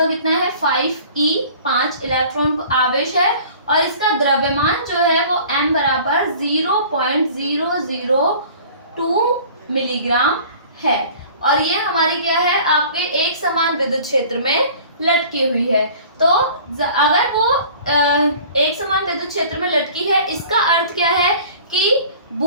कितना है 5e, 5 इलेक्ट्रॉन आवेश है और इसका द्रव्यमान जो है वो m बराबर 0.002 मिलीग्राम है। और ये हमारी क्या है आपके एक समान विद्युत क्षेत्र में लटकी हुई है। तो अगर वो एक समान विद्युत क्षेत्र में लटकी है, इसका अर्थ क्या है कि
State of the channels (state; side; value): inverted; both; correlation -0.47